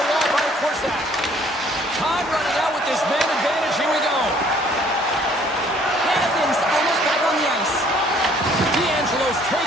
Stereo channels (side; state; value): both; normal; correlation 0.59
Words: wall by Korsak. Time running out with this man advantage here